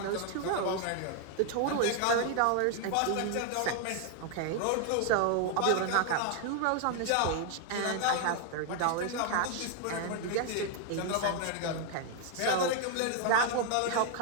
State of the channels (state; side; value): different; both; correlation 0.00